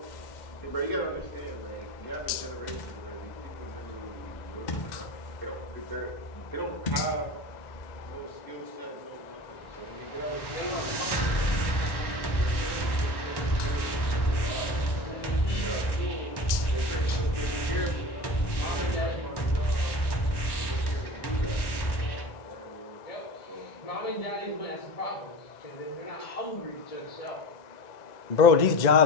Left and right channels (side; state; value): right; late; 1.1 ms